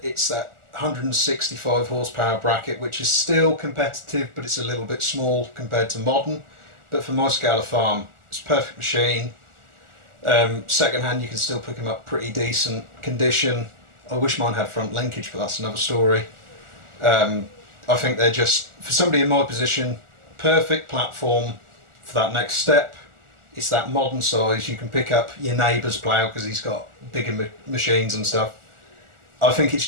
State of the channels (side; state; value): left; late; 1.4 ms